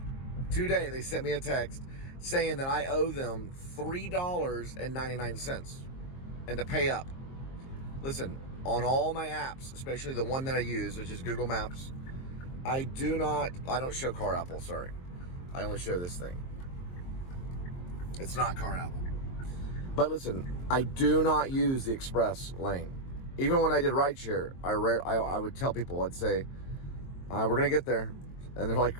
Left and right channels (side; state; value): right; late; 22 ms